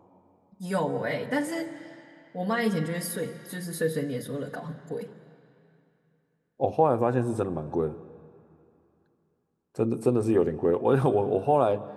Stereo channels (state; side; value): identical; both; correlation 1.00